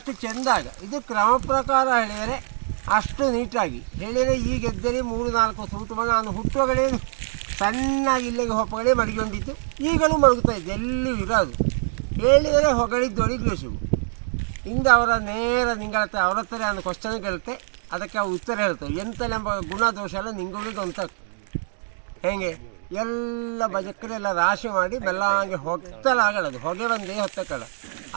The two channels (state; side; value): silent; left; digital silence